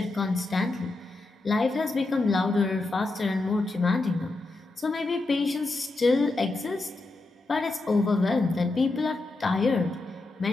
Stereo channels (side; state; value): right; quieter; 3.1 dB